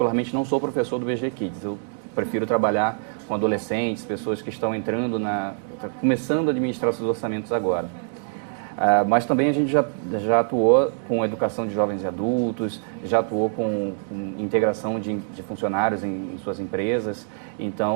não sou professor do BG Kids. Eu prefiro trabalhar com adolescentes, pessoas que estão entrando começando a administrar seus orçamentos agora. Mas também a gente já atuou com educação de jovens e adultos, já atuou com integração de funcionários em suas empresas.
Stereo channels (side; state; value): left; silent; 62 dB below the other